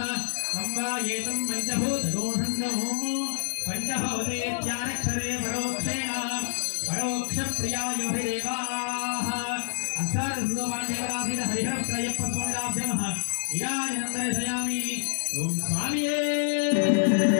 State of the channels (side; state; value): right; silent; digital silence